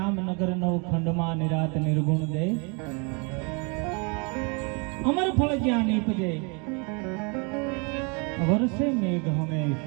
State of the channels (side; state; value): left; quieter; 33.6 dB